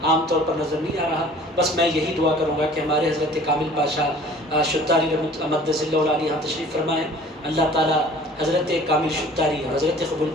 عام طور پر نظر نہیں آ رہا۔ بس میں یہی دعا کروں گا کہ ہمارے حضرت کامل پاشا شتاری مقدس اللہ علیہ یہاں تشریف فرمائیں، اللہ تعالیٰ حضرت کامل شتاری اور حضرت قبول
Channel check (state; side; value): normal; both; correlation 0.49